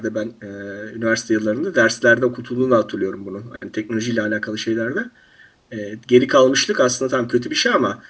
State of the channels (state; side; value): identical; both; correlation 1.00